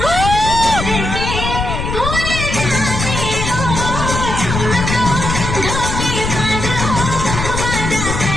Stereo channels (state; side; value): noise; left; rumble, 3 dB below the sound